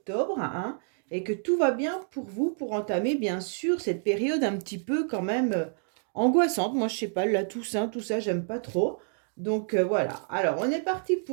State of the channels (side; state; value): left; silent; 59 dB below the other